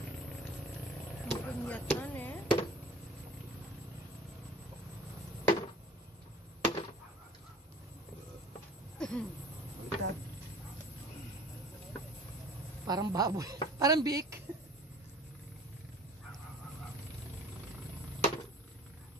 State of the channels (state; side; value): normal; both; correlation 0.44